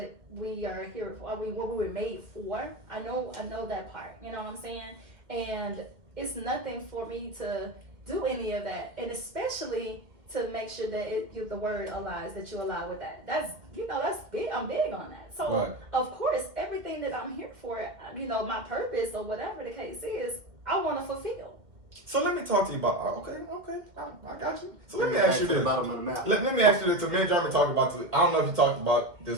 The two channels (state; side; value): late; left; 1.9 ms